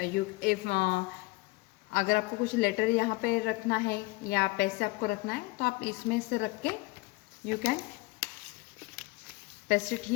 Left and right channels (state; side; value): quieter; right; 22.6 dB